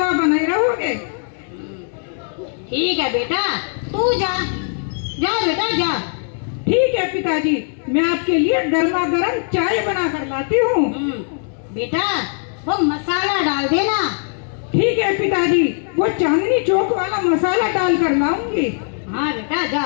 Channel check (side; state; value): right; silent; 61 dB below the other